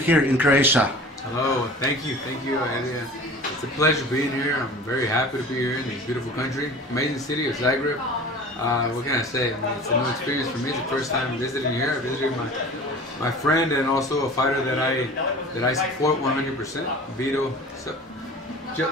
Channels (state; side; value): normal; both; correlation 0.40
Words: in Croatia. Hello, thank you, Adrian. It's a pleasure being here. I'm very happy to be here in this beautiful country, amazing city of Zagreb. What can I say? I mean, it's a new experience for me. It's the first time visiting here. I visited my friend and also a fighter that I support 100%, Vitu